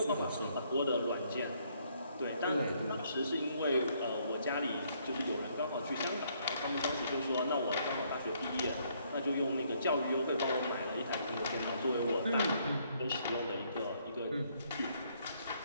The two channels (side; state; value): both; inverted; correlation -0.69